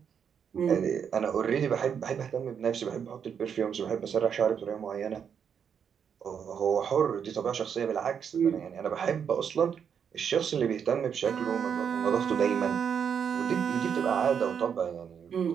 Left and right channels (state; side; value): quieter; left; 7.5 dB